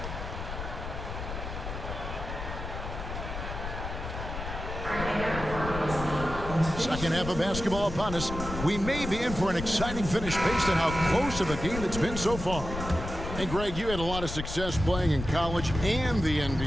Second half of basketball upon us. We may be in for an exciting finish based on how close of a game it's been so far. Hey, Greg, you had a lot of success playing in college and the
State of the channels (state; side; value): noise; left; rumble, 7 dB below the sound